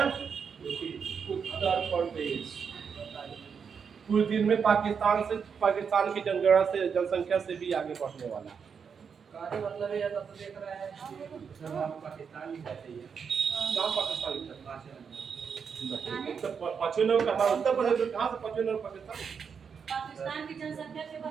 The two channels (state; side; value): quieter; left; 6.5 dB